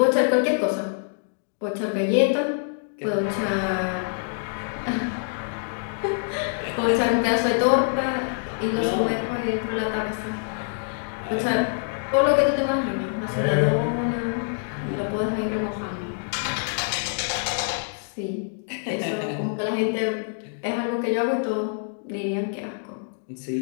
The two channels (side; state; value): right; silent; digital silence